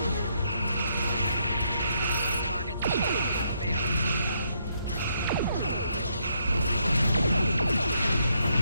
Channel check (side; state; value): both; inverted; correlation -0.75